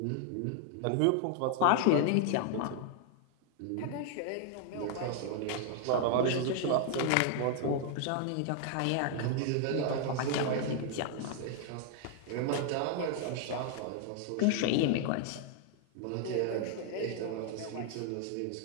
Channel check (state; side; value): different; both; correlation 0.00